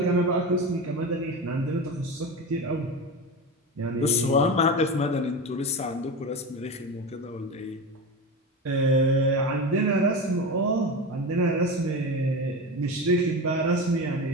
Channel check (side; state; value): both; normal; correlation 0.24